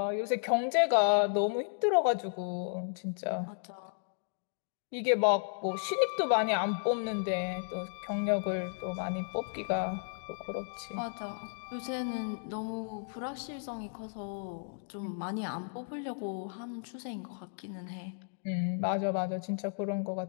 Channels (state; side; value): silent; right; digital silence